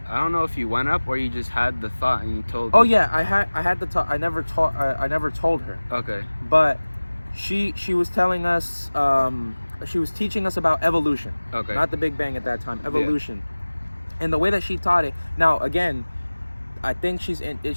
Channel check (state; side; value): inverted; both; correlation -1.00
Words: don't know if you went up or you just had the thought and you told. Oh yeah, I had the talk. I never told her, Okay. but she was telling us, she was teaching us about evolution, Okay. not the Big Bang at that time, evolution. And the way that she taught it, now again, I think she's